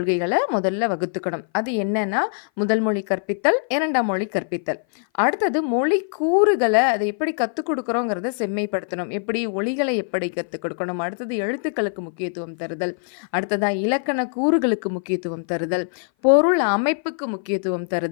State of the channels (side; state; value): right; silent; 57 dB below the other